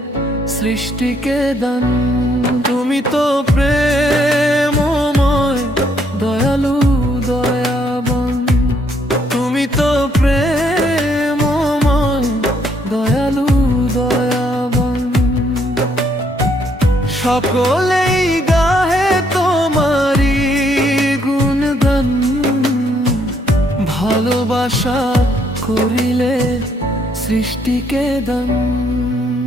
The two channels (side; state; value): both; normal; correlation 0.70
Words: সৃষ্টিকে দান। তুমি তো প্রেমময় দয়ালু দয়াবান, তুমি তো প্রেমময় দয়ালু দয়াবান। সকলেই গাহে তোমারি গুণগান, ভালোবাসা করিলে সৃষ্টিকে দান।